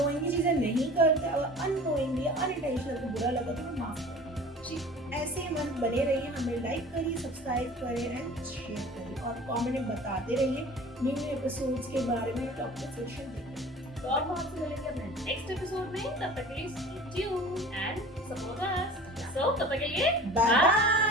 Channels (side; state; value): both; normal; correlation 0.42